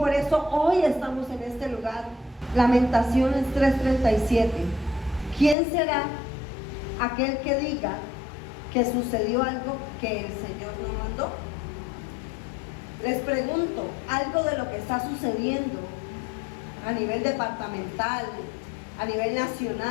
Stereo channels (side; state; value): right; drops out; at 5.6 s